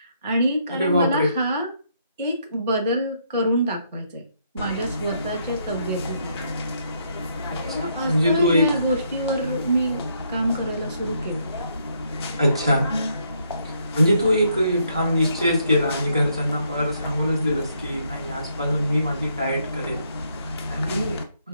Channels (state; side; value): inverted; both; correlation -0.73